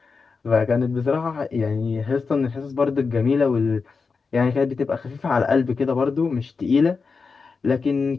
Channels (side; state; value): right; quieter; 4.8 dB